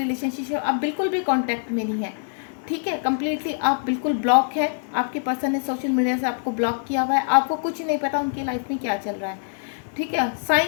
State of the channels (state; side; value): silent; right; 63 dB below the other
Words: आप बिल्कुल भी कांटेक्ट में नहीं है, ठीक है, कम्प्लीटली आप बिल्कुल ब्लॉक है। आपके पर्सन ने सोशल मीडिया से आपको ब्लॉक किया हुआ है, आपको कुछ नहीं पता उनकी लाइफ में क्या चल रहा है, ठीक है।